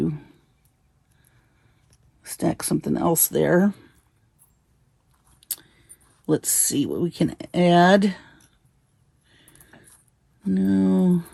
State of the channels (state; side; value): identical; both; correlation 1.00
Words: stack something else there. Let's see what we can add. No.